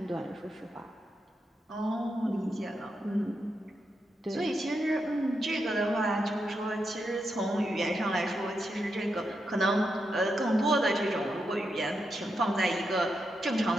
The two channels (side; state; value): both; normal; correlation 0.84